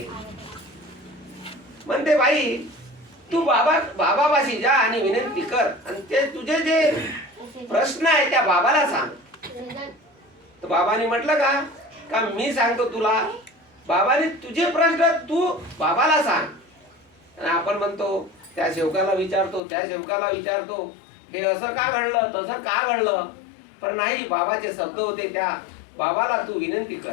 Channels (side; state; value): right; drops out; at 19.6 s